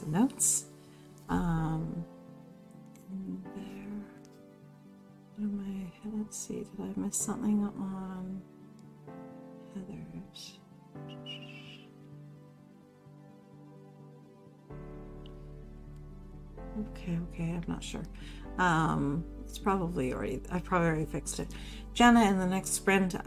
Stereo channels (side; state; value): both; identical; correlation 1.00